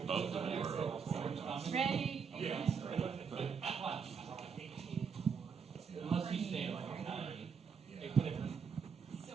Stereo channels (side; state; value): left; quieter; 6.2 dB